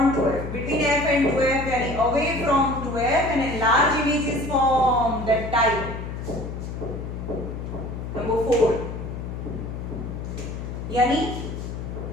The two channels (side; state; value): left; noise; hum, 7 dB below the sound